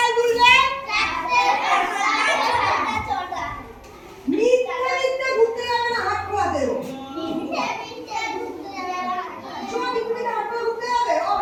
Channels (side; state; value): both; identical; correlation 1.00